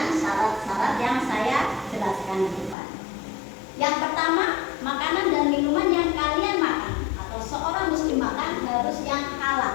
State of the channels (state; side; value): drops out; right; at 2.8 s